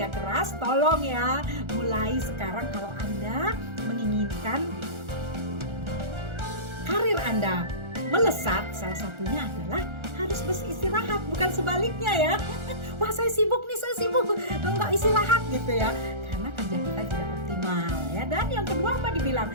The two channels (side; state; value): left; late; 1.4 ms